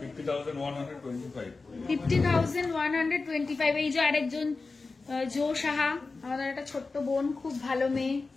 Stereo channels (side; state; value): right; quieter; 3.9 dB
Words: 50,125 50,125। এই যে আরেকজন জো সাহা, আমাদের একটা ছোট্ট বোন, খুব ভালো মেয়ে।